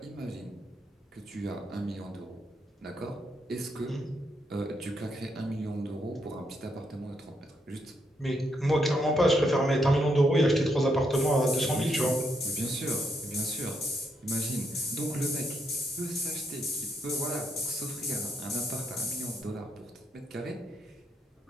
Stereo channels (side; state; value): both; normal; correlation 0.77